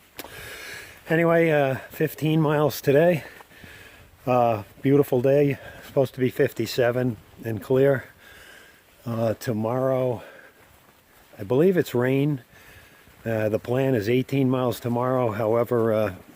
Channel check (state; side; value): identical; both; correlation 1.00